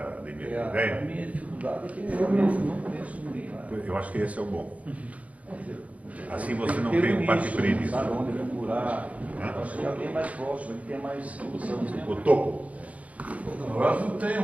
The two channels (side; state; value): left; late; 0.068 ms